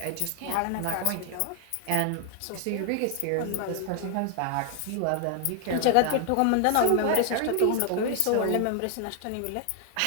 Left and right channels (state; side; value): different; both; correlation 0.00